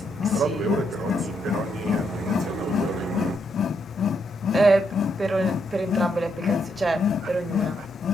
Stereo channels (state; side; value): normal; both; correlation 0.78